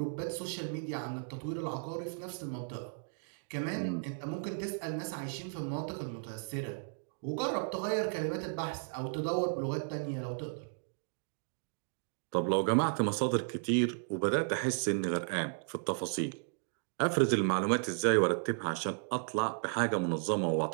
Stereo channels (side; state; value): left; silent; digital silence